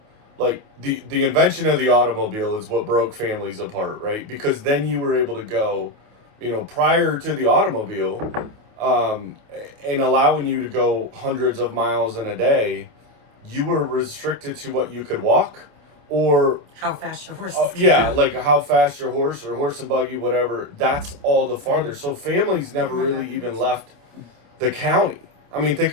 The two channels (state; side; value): late; left; 27 ms